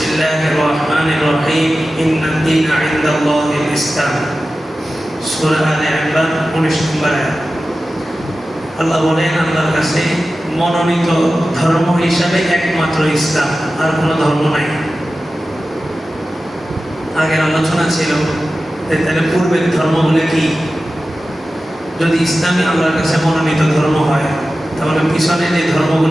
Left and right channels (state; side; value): normal; both; correlation 0.94